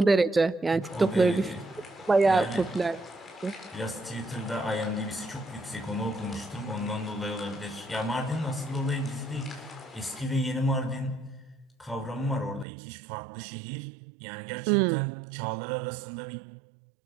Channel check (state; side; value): drops out; left; at 12.7 s